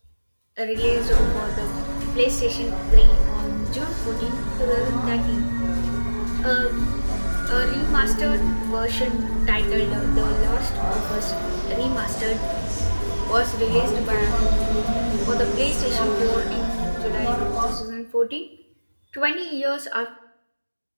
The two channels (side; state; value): both; inverted; correlation -1.00